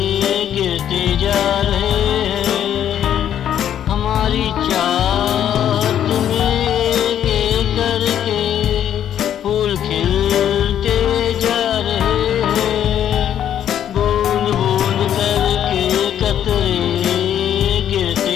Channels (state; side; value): quieter; right; 10.2 dB